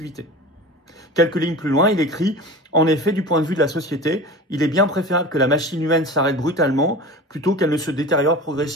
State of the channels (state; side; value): normal; both; correlation 0.34